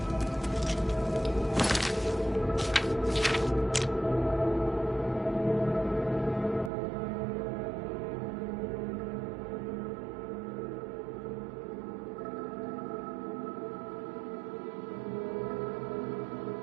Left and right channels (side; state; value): left; drops out; at 6.7 s